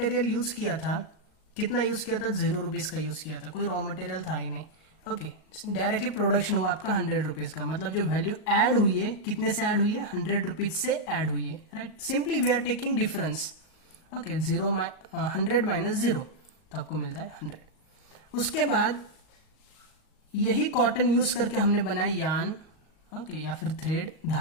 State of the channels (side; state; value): right; late; 38 ms